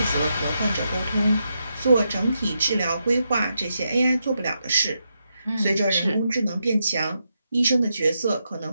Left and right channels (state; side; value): inverted; both; correlation -0.84